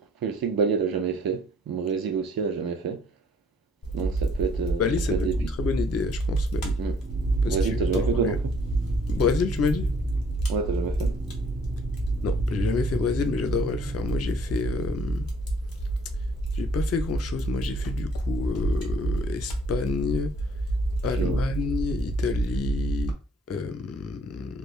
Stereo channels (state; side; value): normal; both; correlation 0.60